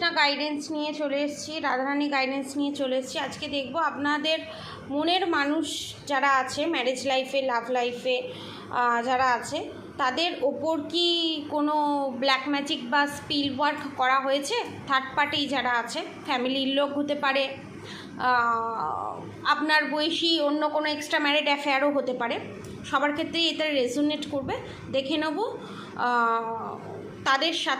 গাইডেন্স নিয়ে চলে এসেছি, রাধারানী গাইডেন্স নিয়ে চলে এসেছি। আজকে দেখব আপনাদের মনের মানুষ যারা আছে, ম্যারেজ লাইফে, লাভ লাইফে যারা আছে, তাদের ওপর কি কোনো ব্ল্যাক ম্যাজিক বা স্পিল ওয়ার্ক করা হয়েছে? থার্ড পার্টি যারা আছে, ফ্যামিলির লোক হতে পারে, আপনার বয়সী অন্য কোনো এক্সট্রা ম্যারিড অ্যাফেয়ারও হতে পারে। সবার ক্ষেত্রেই এটা রেজোনেট করবে। দেখে নেব তাদের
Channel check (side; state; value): both; identical; correlation 1.00